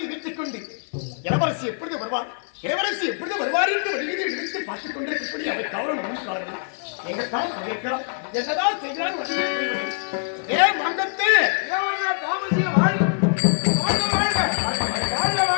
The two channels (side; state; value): right; silent; 56 dB below the other